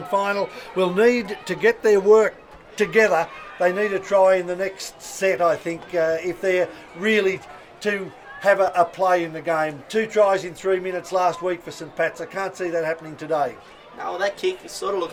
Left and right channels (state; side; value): identical; both; correlation 1.00